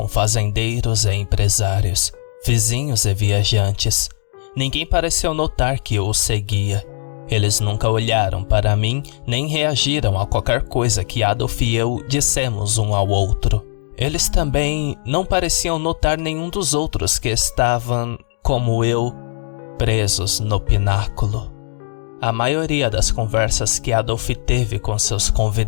fazendeiros e empresários, vizinhos e viajantes. Ninguém pareceu notar que eu o seguia. Eles nunca olharam para mim, nem reagiram a qualquer coisa que Adolf e eu dissemos um ao outro. Eles também não pareciam notar nenhum dos outros que estavam, como eu, presos no pináculo. A maioria das conversas que Adolf teve com seus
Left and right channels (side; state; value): right; silent; 58 dB below the other